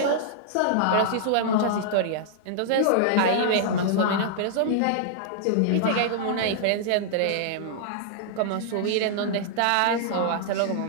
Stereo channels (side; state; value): both; different; correlation -0.01